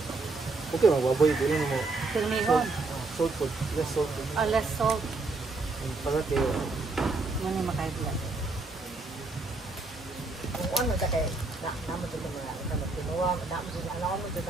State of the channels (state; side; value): quieter; left; 3.5 dB